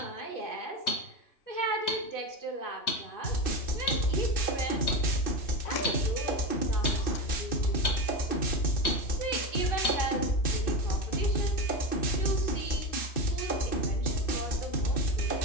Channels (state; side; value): late; right; 2.6 ms